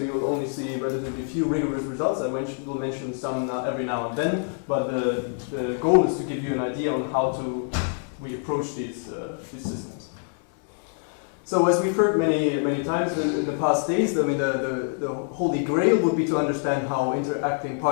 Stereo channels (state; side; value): silent; right; 57 dB below the other